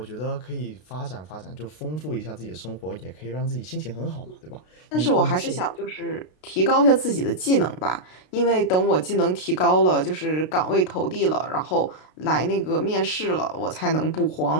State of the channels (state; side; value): late; right; 32 ms